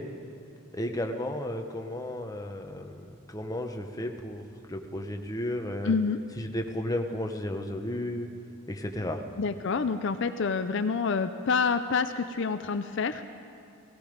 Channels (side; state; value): right; quieter; 3.3 dB